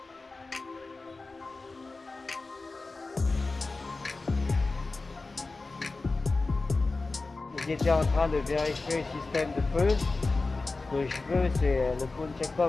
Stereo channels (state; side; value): quieter; right; 3.6 dB